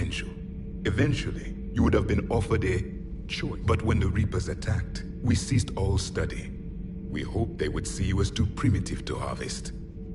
Eventually, you would have been offered a choice. But when the Reapers attacked, we ceased all study. We hoped they would see you as too primitive to harvest.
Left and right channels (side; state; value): both; identical; correlation 1.00